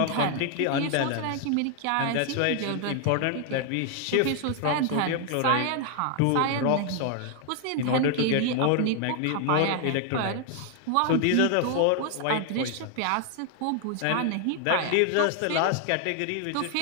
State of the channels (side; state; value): both; different; correlation 0.00